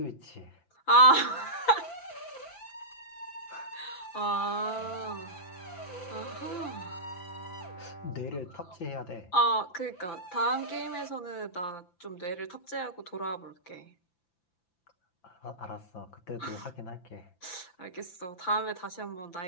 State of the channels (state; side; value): late; right; 5.9 ms